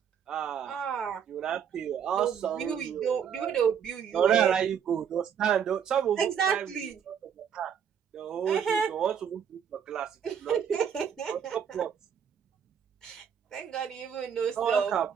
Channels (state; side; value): quieter; left; 7.9 dB